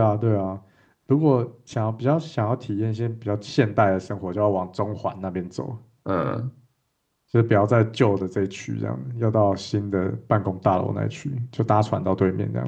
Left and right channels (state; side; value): identical; both; correlation 1.00